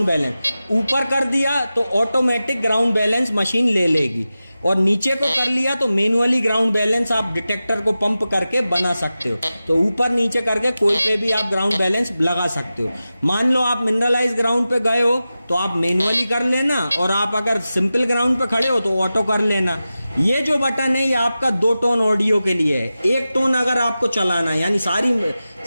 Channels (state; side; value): inverted; both; correlation -0.94